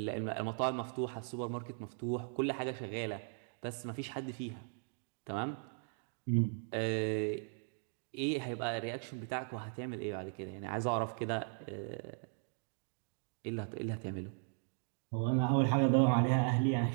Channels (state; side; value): silent; left; 53 dB below the other